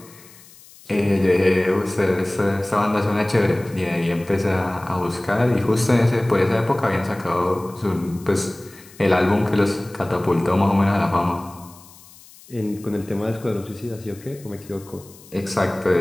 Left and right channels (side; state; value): left; noise; hiss, 23 dB below the sound